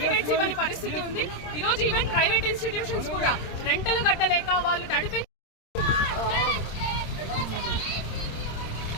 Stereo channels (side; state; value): right; late; 26 ms